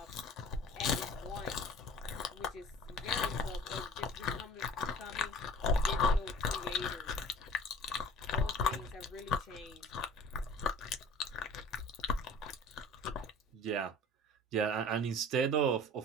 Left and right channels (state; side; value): normal; both; correlation 0.44